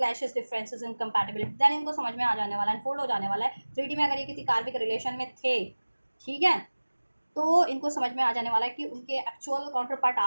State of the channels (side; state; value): both; inverted; correlation -1.00